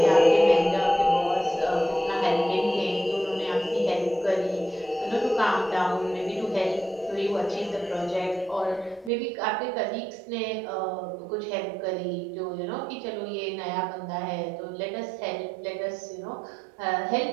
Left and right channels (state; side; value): drops out; left; at 9.1 s